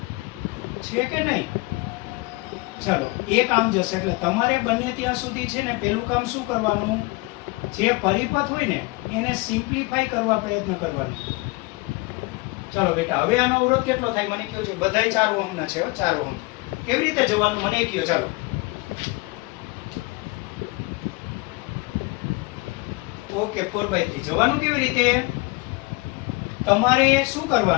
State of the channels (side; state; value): right; quieter; 24.7 dB